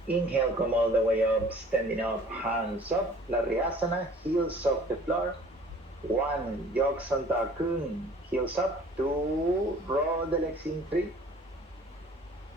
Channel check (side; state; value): both; normal; correlation 0.50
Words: Inhale, come all the way up, standing up, hands up. Lariyasana, heels off the floor. 1, Yoksanta Kun, heels up. 2, roll the legs in. 3.